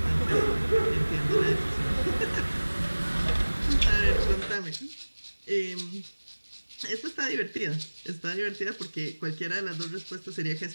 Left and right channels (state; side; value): inverted; both; correlation -1.00